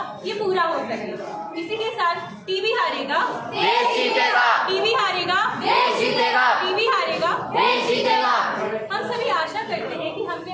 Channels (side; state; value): both; identical; correlation 1.00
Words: ये पूरा हो सके। इसी के साथ टीबी हारेगा देश जीतेगा, टीबी हारेगा देश जीतेगा, टीबी हारेगा देश जीतेगा। हम सभी आशा करते हैं कि हमने